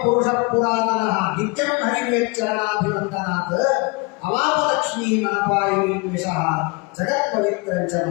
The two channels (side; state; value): right; quieter; 28.7 dB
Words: ಪುರುಷ ಪುರಾತನ ನಿತ್ಯಂ ಹರಿವೇಚ್ಚರಣಾಭಿವಂದನಾತ್ ಅವಾಪಲಕ್ಷ್ಮೀ ಮನಪಾಯಿನಿ ವಿಷಃ ಜಗತ್ ಪವಿತ್ರಂಚ